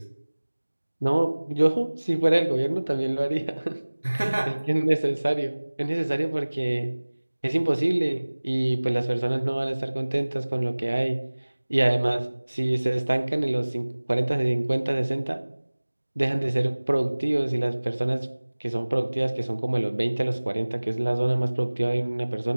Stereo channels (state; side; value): inverted; both; correlation -1.00